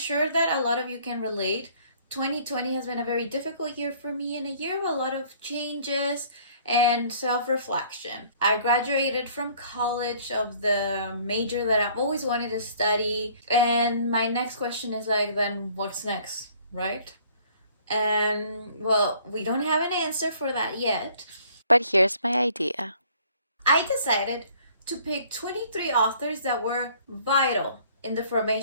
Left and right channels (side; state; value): both; inverted; correlation -0.57